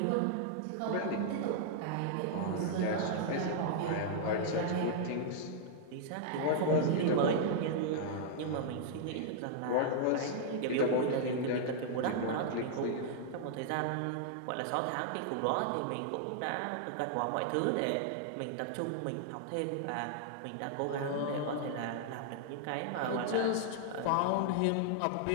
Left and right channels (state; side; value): different; both; correlation -0.01